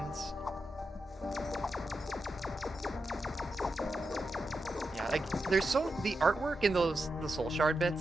Yeah, like the artwork in the soul shard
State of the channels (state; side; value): normal; both; correlation 0.88